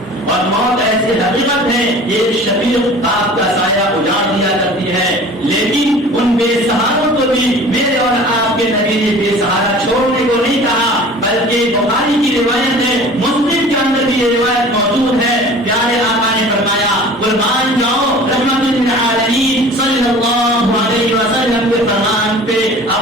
اور موت ایسی حقیقت ہے یہ شفیق باپ کا سایہ اجاڑ دیا کرتی ہے. لیکن ان بے سہاروں کو بھی میرے اور آپ کے نبی نے بے سہارا چھوڑنے کو نہیں کہا، بلکہ بخاری کی روایت ہے، مسلم کے اندر بھی یہ روایت موجود ہے. پیارے آقا نے فرمایا قربان جاؤ رحمت للعالمین صلی اللہ علیہ وسلم کے فرمان پہ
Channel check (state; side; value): normal; both; correlation 0.43